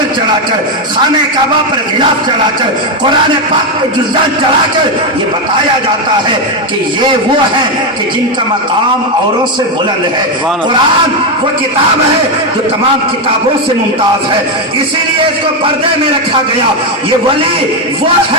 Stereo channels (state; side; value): normal; both; correlation 0.06